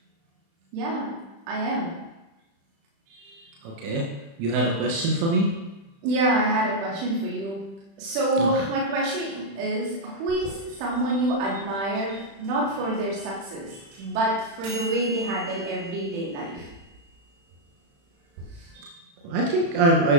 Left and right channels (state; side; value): late; left; 36 ms